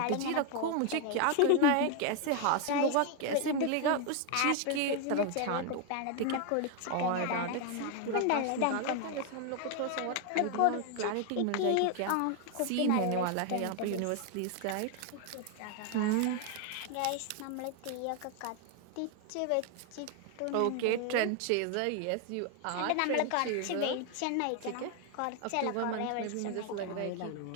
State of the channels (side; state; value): both; different; correlation 0.01